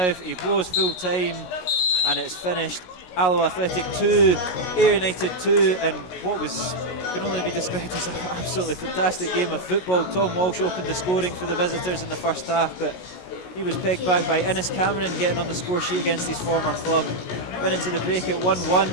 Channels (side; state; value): right; late; 16 ms